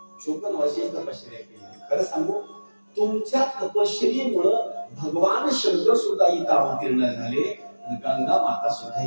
54 वर्षाची तपश्चर्या केली. खरं सांगू, तुमच्या तपश्चर्येमुळं भगवान शंकर सुद्धा इथं अवतीर्ण झाले आणि गंगा माता सुद्धा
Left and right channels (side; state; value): both; inverted; correlation -1.00